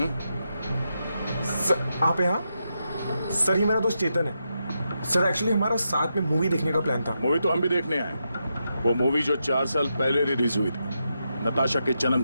सर आप यहाँ? सर ये मेरा दोस्त चेतन है। सर एक्चुअली हमारा साथ में मूवी देखने का प्लान था। मूवी तो हम भी देखने आए। वो मूवी जो 4 साल पहले रिलीज हुई थी नताशा के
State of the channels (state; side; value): inverted; both; correlation -0.85